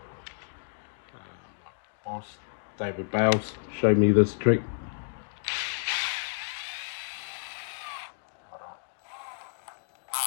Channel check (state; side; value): silent; right; digital silence